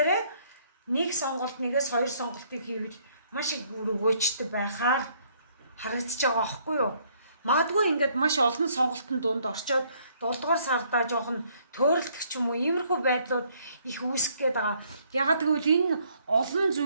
нэг сонголт нэгээс хоёр сонголтыг хийвэл маш их өгөөжтэй байхаар харагдаж байгаа аахгүй юу? Магадгүй ингээд маш олон сонголтын дунд орчоод 7 дугаар сардаа жоохон төөрөлдөх ч юм уу иймэрхүү байдлууд их үүсэх гээд байгаа. Ягаад гэвэл энэ олон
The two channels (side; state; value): both; inverted; correlation -0.66